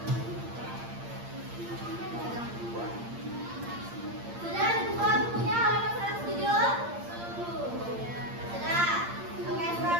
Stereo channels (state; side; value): late; left; 8.7 ms